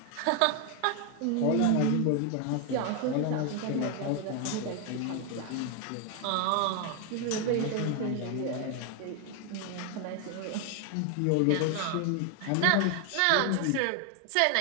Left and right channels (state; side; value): different; both; correlation 0.01